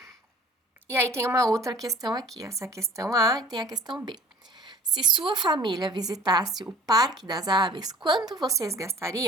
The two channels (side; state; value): both; normal; correlation 0.49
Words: E aí tem uma outra questão aqui, essa questão A e tem a questão B. Se sua família visitasse o Parque das Aves, quanto vocês